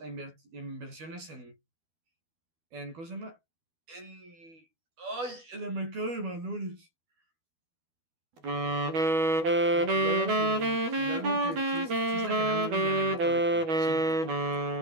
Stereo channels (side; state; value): left; late; 12 ms